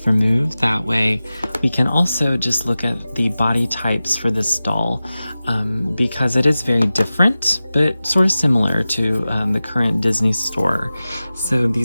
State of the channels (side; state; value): both; inverted; correlation -0.95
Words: removed. That way we can also just look at the body types for this doll, because it is very different, but sort of similar to the current Disney store. So